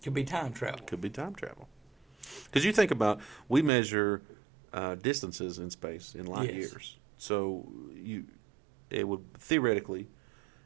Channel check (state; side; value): drops out; left; at 3.7 s